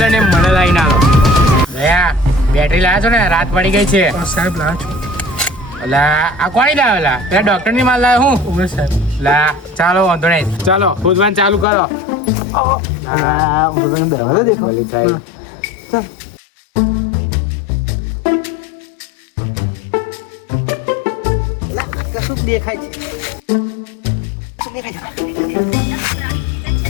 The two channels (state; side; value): drops out; right; at 11.7 s